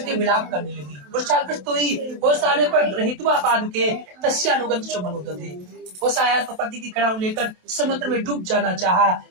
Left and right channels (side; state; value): left; late; 27 ms